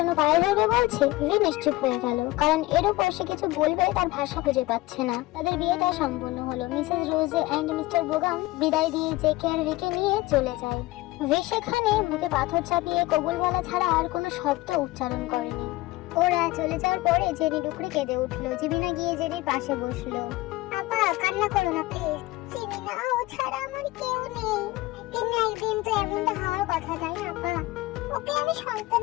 পায়ে ধরবে বলছে। ভি নিশ্চুপ হয়ে গেল, কারণ এর উপর সে কিছু বলবে তার ভাষা খুঁজে পাচ্ছে না। তাদের বিয়েটা সম্পূর্ণ হলো। মিসেস রোজে এন্ড মিস্টার বোগাম বিদায় দিয়ে জেকে আর ভিকে নিয়ে চলে যায়। ভি সেখানে মুখে পাথর চাপিয়ে কবুল বলা ছাড়া আর কোনো শব্দ উচ্চারণ করেনি। ওরা চলে যাওয়ার পরে জেনি ডুকরে কেঁদে উঠলো। জিমিনা গিয়ে জেনির পাশে বসলো। আপা কান্না করো না প্লিজ। চিনি না, ও ছাড়া আমার কেউ নেই। একদিন না একদিন তো এমনটা হওয়ার কথা, তাই না আপা? ওকে আমি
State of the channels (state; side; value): quieter; right; 19.4 dB